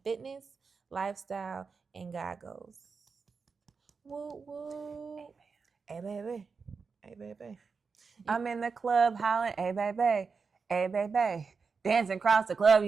fitness, lifestyle, and God goes. Woo woo. Hey baby. Hey baby. I'm in the club hollering, hey baby, hey baby. Dancing across the club,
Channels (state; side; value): quieter; left; 5.1 dB